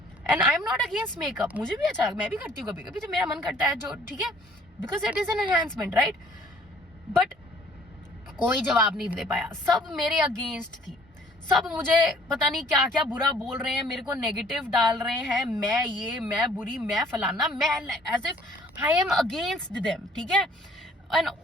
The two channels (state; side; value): normal; both; correlation 0.57